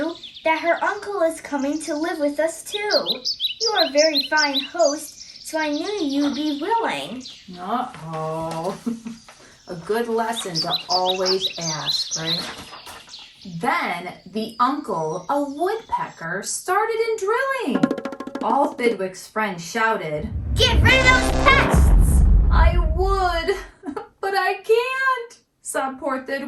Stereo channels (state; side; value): identical; both; correlation 1.00